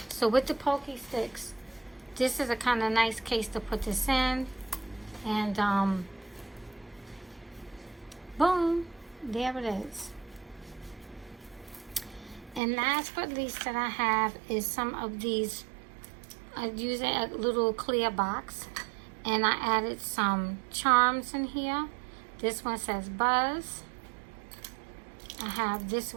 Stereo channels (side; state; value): left; drops out; at 12.6 s